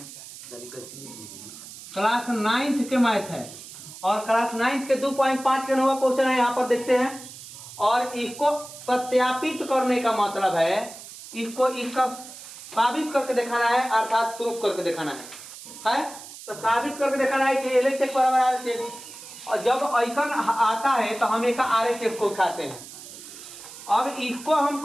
9th के मैथ है और क्लास 9th के 2.5 के नंबर क्वेश्चन है। यहाँ पर देखते हैं और इसको सत्यापित करने का मतलब है इसको इसका साबित करके दिखाना है, अर्थात प्रूफ करके दिखाना है। तो साबित करके दिखाना है कि LHS बराबर RHS और जब आइकन आता है तो हम एक RHS को उठाते हैं। अब इसको हम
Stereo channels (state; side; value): noise; right; hiss, 15 dB below the sound